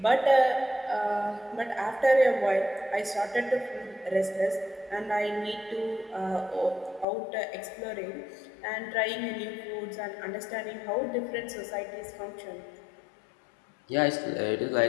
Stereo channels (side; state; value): right; drops out; at 7.1 s